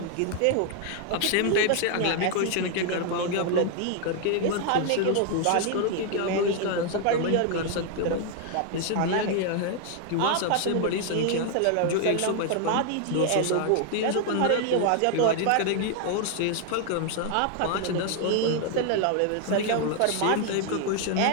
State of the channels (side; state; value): both; different; correlation 0.00